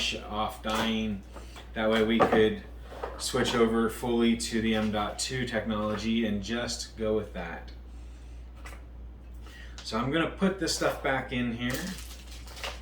off dying. That way we could switch over fully to the M.2 technology and just go with that. So I'm going to put this stuff back in here.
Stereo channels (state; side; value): identical; both; correlation 1.00